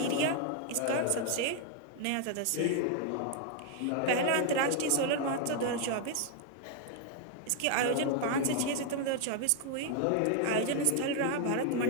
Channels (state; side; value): different; both; correlation 0.00